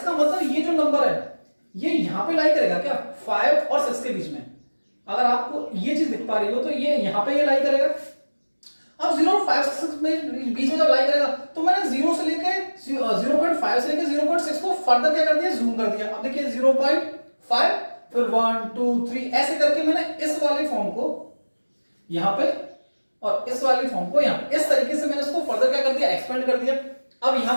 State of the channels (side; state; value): both; inverted; correlation -1.00